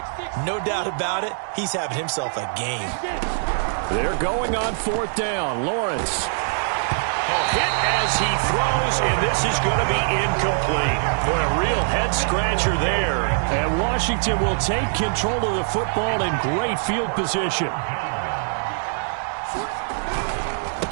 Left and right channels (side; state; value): left; silent; 63 dB below the other